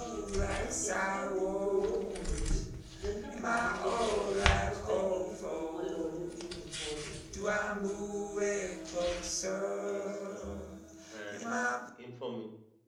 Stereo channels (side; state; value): both; identical; correlation 1.00